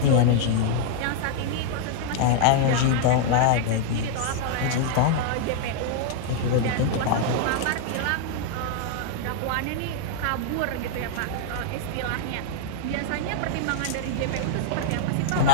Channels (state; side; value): different; both; correlation -0.01